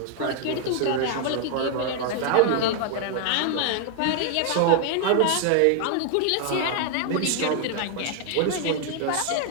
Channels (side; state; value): both; different; correlation 0.00